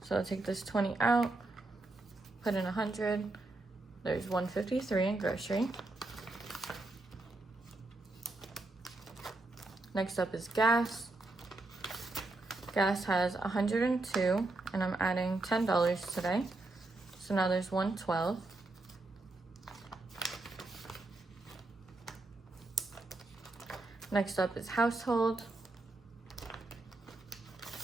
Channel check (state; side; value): quieter; left; 3.0 dB